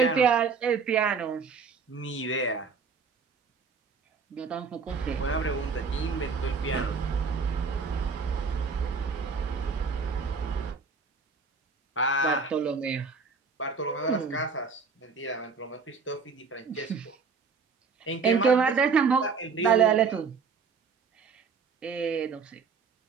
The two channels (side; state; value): left; quieter; 5.2 dB